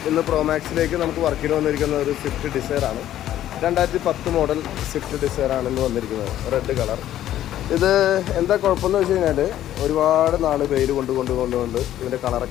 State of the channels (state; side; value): quieter; right; 12.4 dB